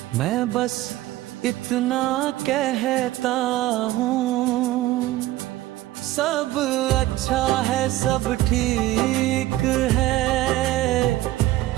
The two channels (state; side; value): quieter; left; 16.1 dB